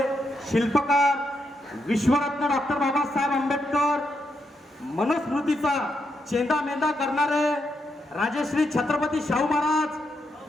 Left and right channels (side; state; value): both; normal; correlation 0.81